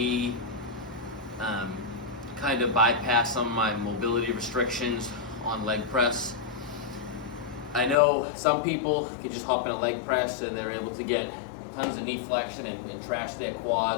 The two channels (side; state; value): right; drops out; at 8.0 s